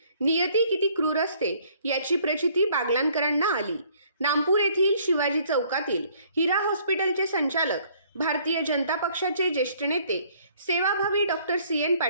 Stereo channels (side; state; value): both; inverted; correlation -0.61